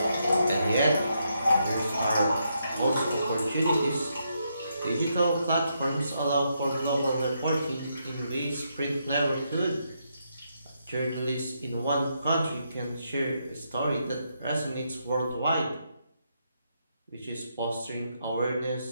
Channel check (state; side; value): inverted; both; correlation -0.79